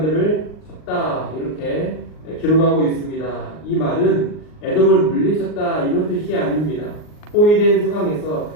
쳤다, 이렇게 기록하고 있습니다. 이 말은 에돔을 물리쳤다 이런 뜻이 아닙니다. 포위된 상황에서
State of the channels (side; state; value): right; late; 39 ms